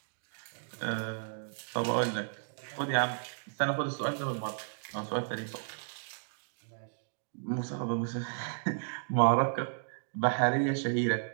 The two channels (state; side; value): silent; left; digital silence